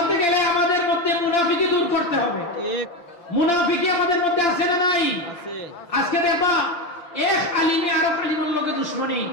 গেলে আমাদের মধ্যে মুনাফিকি দূর করতে হবে। ঠিক, মুনাফিকি আমাদের মধ্যে আছে না নাই? আছে। আজকে দেখবা এক আলিমে আরেক আলিমের লগে দুশমনী,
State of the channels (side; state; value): right; late; 5.8 ms